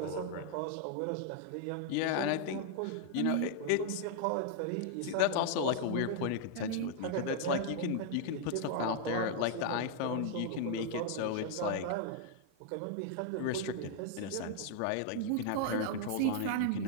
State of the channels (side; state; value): both; different; correlation 0.00